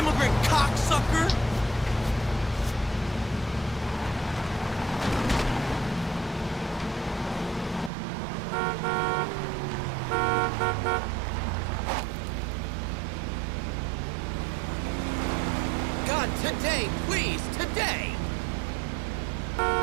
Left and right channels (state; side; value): drops out; left; at 7.9 s